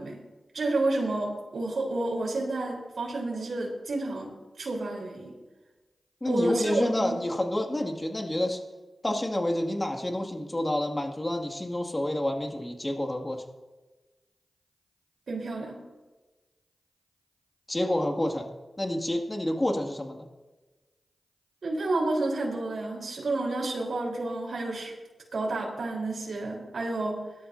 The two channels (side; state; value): both; normal; correlation 0.94